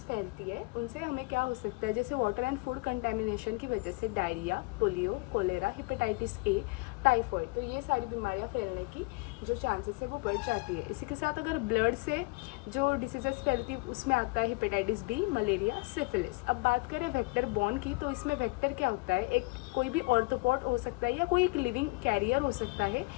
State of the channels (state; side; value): quieter; right; 26.9 dB